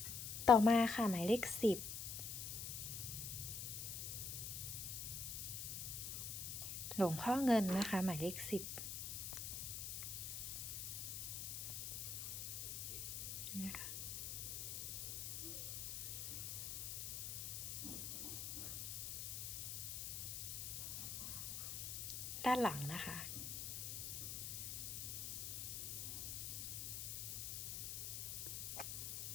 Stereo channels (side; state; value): left; noise; hiss, 4 dB below the sound